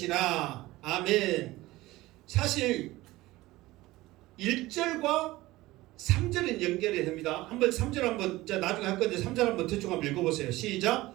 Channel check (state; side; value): quieter; left; 18.5 dB